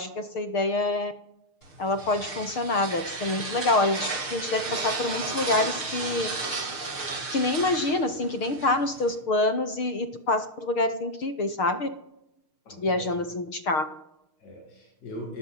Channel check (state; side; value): late; right; 6.6 ms